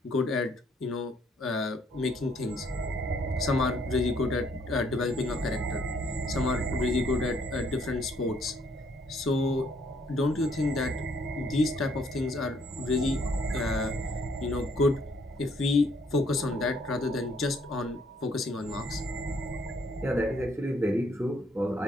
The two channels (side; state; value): both; normal; correlation 0.67